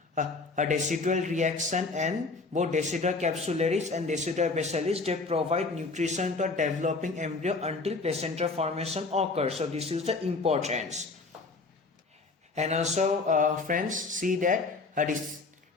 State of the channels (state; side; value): quieter; right; 3.8 dB